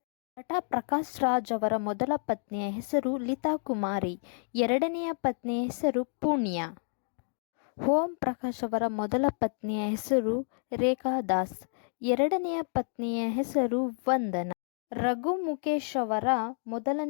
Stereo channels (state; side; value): silent; right; 58 dB below the other